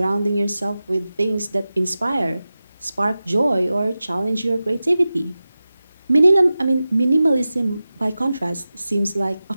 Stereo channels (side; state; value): both; inverted; correlation -0.95